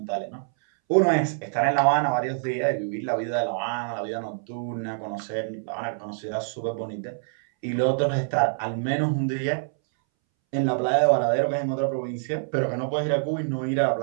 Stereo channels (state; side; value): silent; left; 61 dB below the other